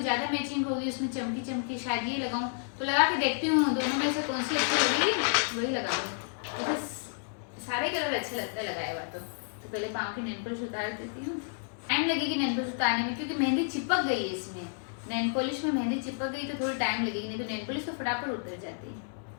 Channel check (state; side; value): silent; right; 57 dB below the other